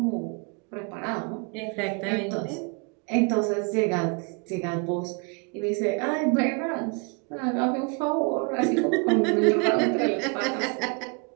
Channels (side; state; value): left; quieter; 32.9 dB